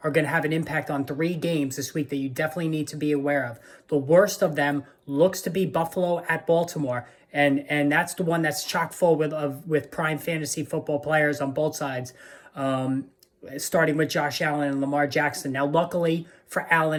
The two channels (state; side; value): identical; both; correlation 1.00